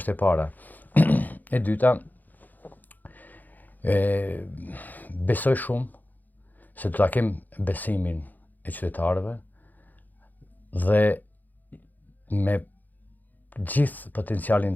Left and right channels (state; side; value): late; right; 0.084 ms